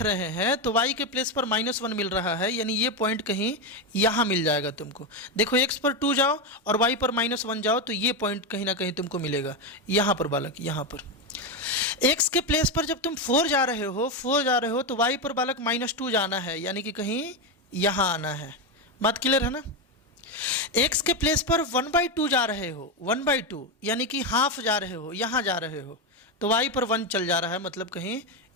रहे हैं तो वाई के प्लेस पर -1 मिल रहा है, यानी ये पॉइंट कहीं यहाँ मिल जाएगा तुमको। देखो एक्स पर 2 जाओ और वाई पर -1 जाओ तो ये पॉइंट कहीं ना कहीं तुमको मिलेगा, यहाँ पर बालक, यहाँ पर। एक्स के प्लेस पर जब तुम 4 जा रहे हो तो वाई पर बालक -2 जाना है, यानी कि कहीं यहाँ आना है। बात क्लियर है ना। एक्स के प्लेस पर 1/2 जा रहे हो, 1/2 यानी कि हाफ जा रहे हो, यहाँ जा रहे हो, तो वाई पर 1 चल जा रहा है, मतलब कहीं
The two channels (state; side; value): normal; both; correlation 0.10